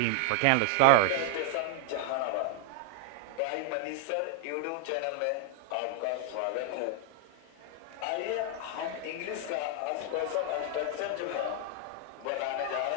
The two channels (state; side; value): different; both; correlation 0.00